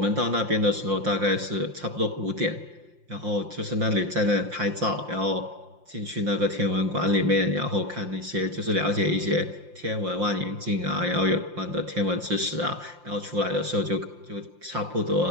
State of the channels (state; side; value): late; left; 5.7 ms